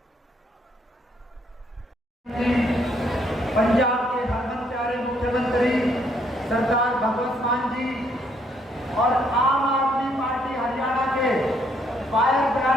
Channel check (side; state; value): both; normal; correlation 0.69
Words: पंजाब के हरमन प्यारे मुख्यमंत्री सरदार भगवंत मान जी और आम आदमी पार्टी हरियाणा के फायर